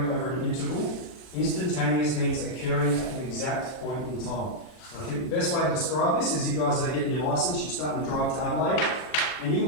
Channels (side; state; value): right; late; 39 ms